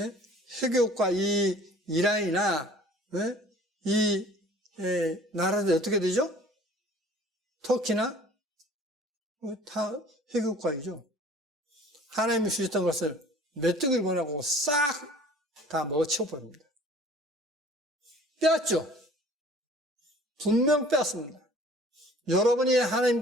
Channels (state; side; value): normal; both; correlation 0.49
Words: 해교국가 이 이란이나 이 나라들이 어떻게 되죠? 터키나 다 해교국가이죠. 하나님이 주셨던 것을 메뚜기를 보내고 싹 다 먹어치워버립니다. 빼앗죠. 분명 빼앗습니다. 여러분이